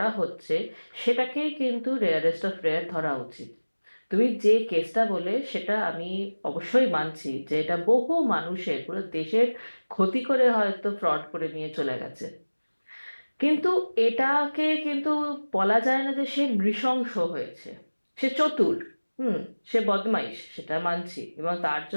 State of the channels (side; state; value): both; inverted; correlation -1.00